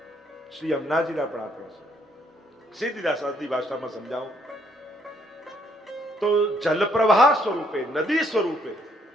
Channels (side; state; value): both; normal; correlation 0.69